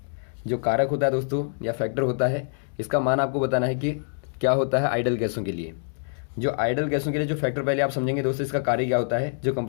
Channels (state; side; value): silent; right; digital silence